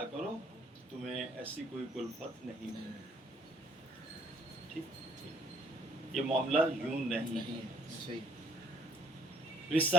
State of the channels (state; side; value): normal; both; correlation 0.62